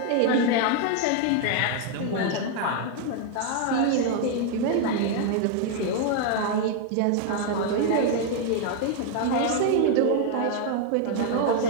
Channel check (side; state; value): both; different; correlation 0.00